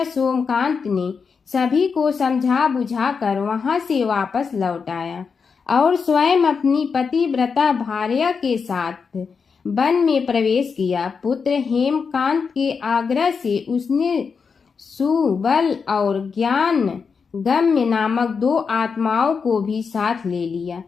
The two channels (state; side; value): quieter; right; 5.6 dB